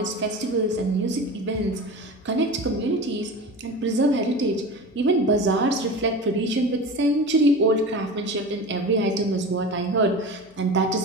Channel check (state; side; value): noise; left; hum, 29 dB below the sound